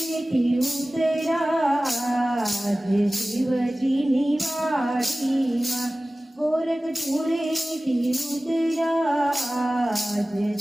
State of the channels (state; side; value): normal; both; correlation 0.97